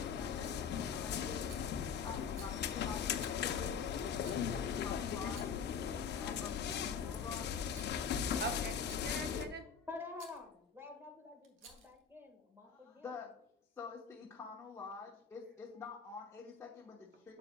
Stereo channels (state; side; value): quieter; right; 6.7 dB